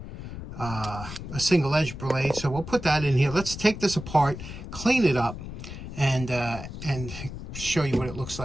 single edge blade. So we'll put that in here. Let's take this apart, clean it up, and show you what it looks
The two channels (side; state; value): left; noise; rumble, 10 dB below the sound